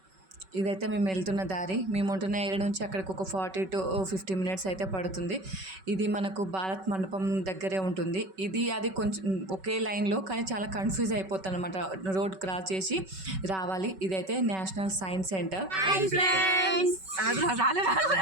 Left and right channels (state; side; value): late; left; 5.3 ms